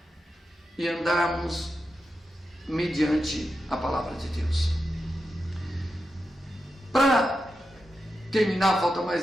e andarmos mediante a palavra de Deus. Para terminar, falta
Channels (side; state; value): both; normal; correlation 0.89